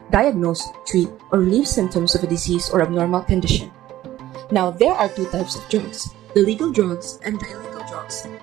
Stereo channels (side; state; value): left; quieter; 14.1 dB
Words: diagnose, treat, or relieve symptoms of a disease or abnormal condition. Now, there are two types of drugs, the legal drugs and the illegal drugs.